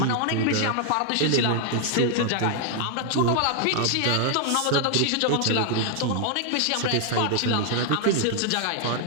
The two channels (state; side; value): different; both; correlation 0.00